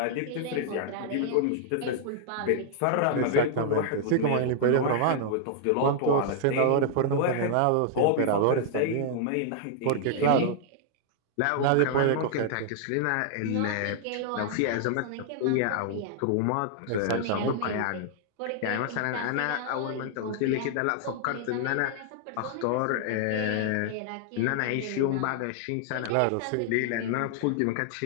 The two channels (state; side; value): different; both; correlation -0.01